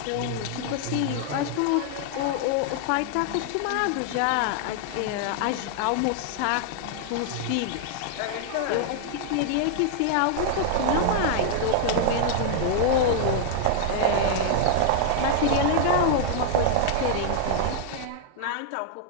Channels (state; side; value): different; both; correlation 0.00